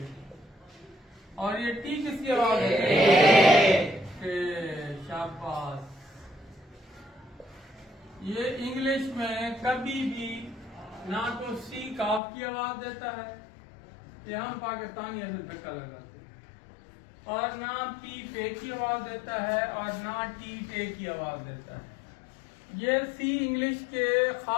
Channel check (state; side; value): drops out; right; at 12.2 s